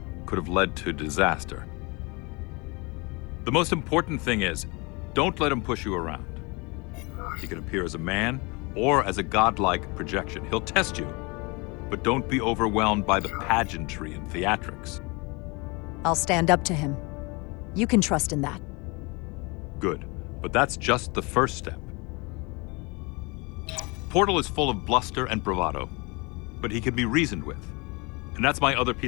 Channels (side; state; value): right; quieter; 27.9 dB